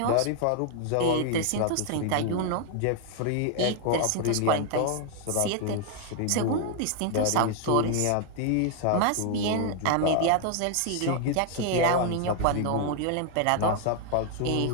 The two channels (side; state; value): both; different; correlation 0.00